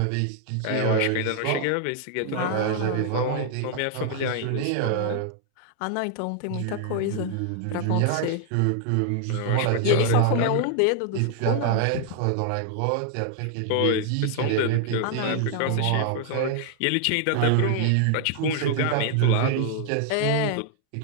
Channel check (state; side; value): different; both; correlation 0.00